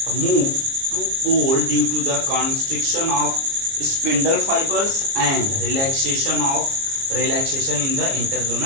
move to pole due to the constriction of spindle fibres and relaxation in the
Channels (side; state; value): left; late; 29 ms